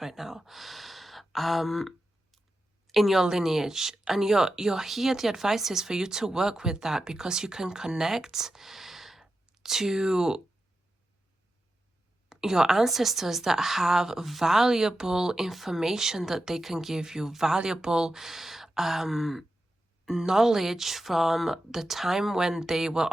right now. In your lineage. And you're here, the advice is for you to work with that, because you can connect to your ancestors that have valuable information that they can give you, valuable knowledge from the time when they were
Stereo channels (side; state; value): both; normal; correlation 0.90